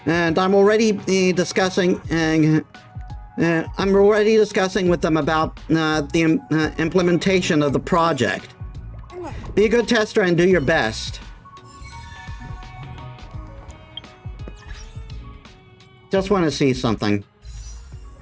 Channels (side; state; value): both; identical; correlation 1.00